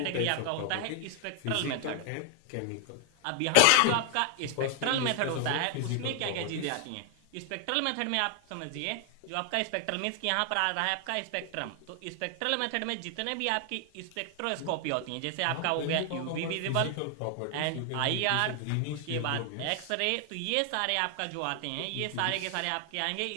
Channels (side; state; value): both; different; correlation 0.00